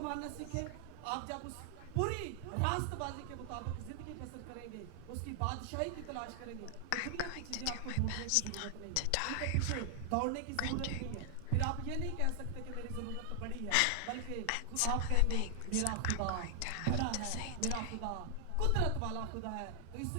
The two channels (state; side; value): different; both; correlation 0.00